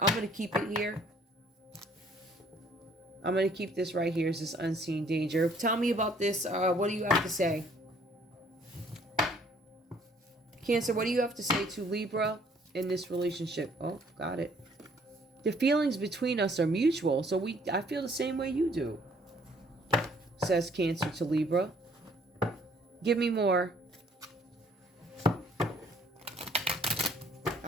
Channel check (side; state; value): both; normal; correlation 0.61